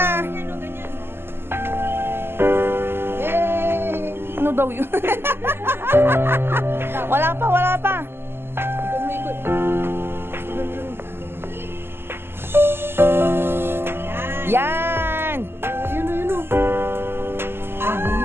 Yay! Ano daw yun? Wala pa, wala pa. Ikot mo, ikot. Yan! Ayun o.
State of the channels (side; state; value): left; late; 0.11 ms